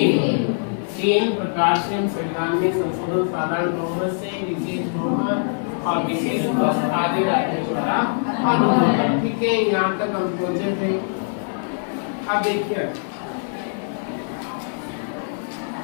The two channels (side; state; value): right; silent; digital silence